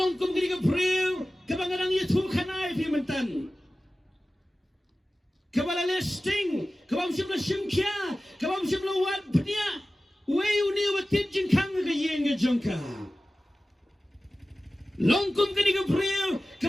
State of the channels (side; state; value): both; normal; correlation 0.96